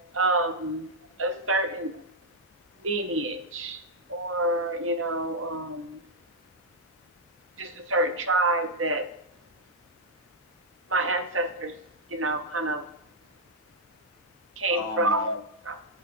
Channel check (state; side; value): normal; both; correlation -0.04